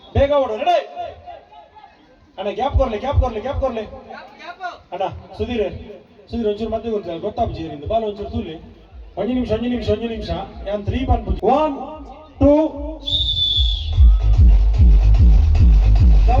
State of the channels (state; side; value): identical; both; correlation 1.00